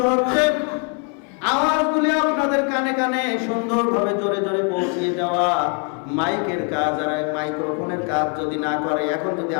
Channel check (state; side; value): quieter; right; 39.6 dB